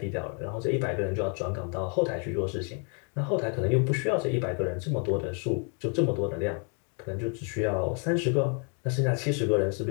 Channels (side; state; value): right; quieter; 39.1 dB